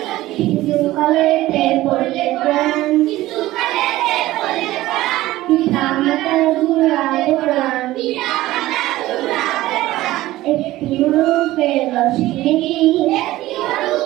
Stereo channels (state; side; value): quieter; left; 16.5 dB